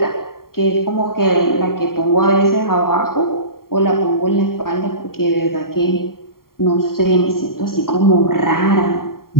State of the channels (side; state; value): right; late; 0.93 ms